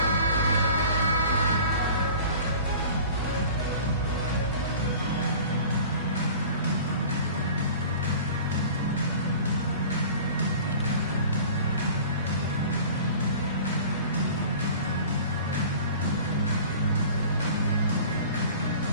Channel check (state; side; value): inverted; both; correlation -0.43